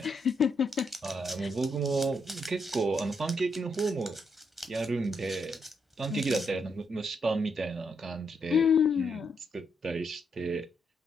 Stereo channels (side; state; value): both; normal; correlation 0.78